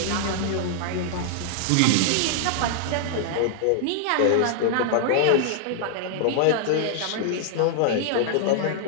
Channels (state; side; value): different; both; correlation -0.01